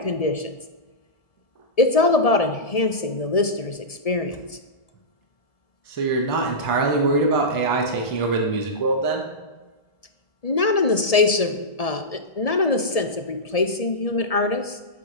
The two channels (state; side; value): late; right; 1.7 ms